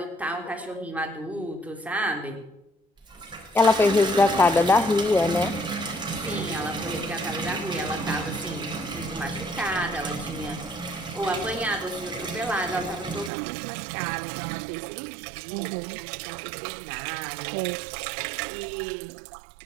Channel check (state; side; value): drops out; left; at 13.3 s